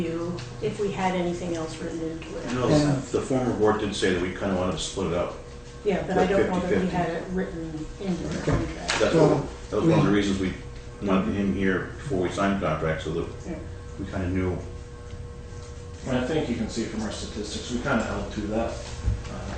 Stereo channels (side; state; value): both; identical; correlation 1.00